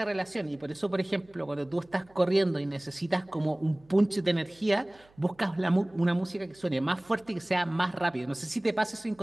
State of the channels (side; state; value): right; noise; hum, 30 dB below the sound